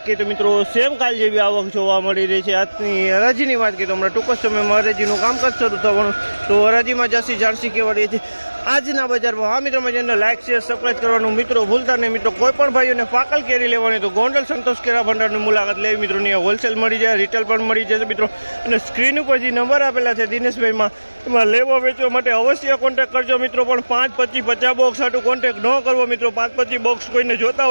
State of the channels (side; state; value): both; inverted; correlation -1.00